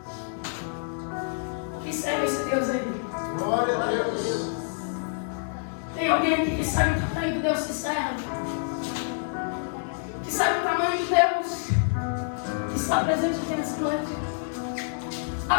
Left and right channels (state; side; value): silent; right; digital silence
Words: Quem serve esse Deus aí? Glória a Deus. Tem alguém aqui que sabe o tamanho de Deus que serve? Que sabe o tamanho de Deus que está presente aqui nessa noite? A